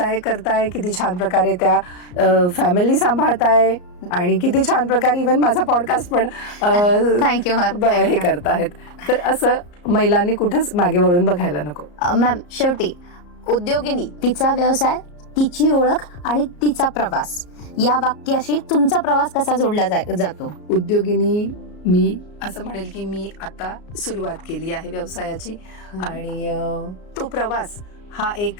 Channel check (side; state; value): right; late; 34 ms